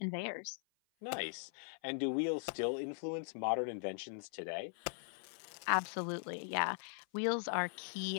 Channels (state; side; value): silent; right; 51 dB below the other